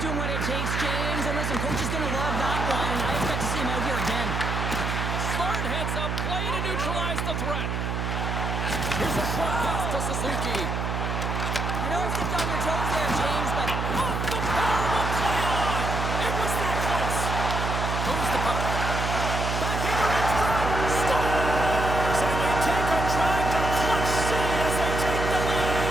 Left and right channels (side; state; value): right; noise; hum, 1 dB below the sound